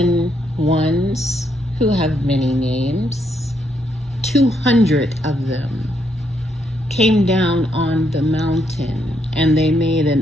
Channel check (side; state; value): both; normal; correlation 0.76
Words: ones who have many names, 200 of them, came down on the mountain and they made